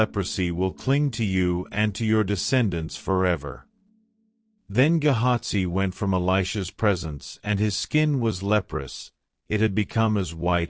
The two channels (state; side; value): identical; both; correlation 1.00